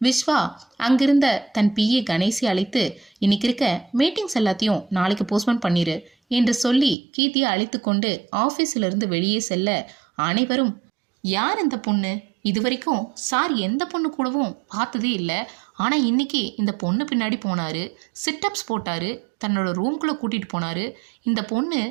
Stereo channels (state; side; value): drops out; left; at 7.0 s